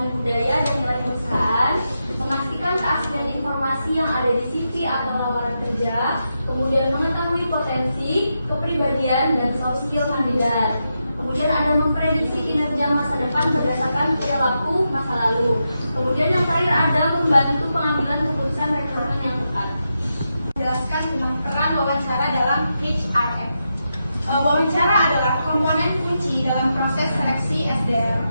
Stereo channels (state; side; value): inverted; both; correlation -0.86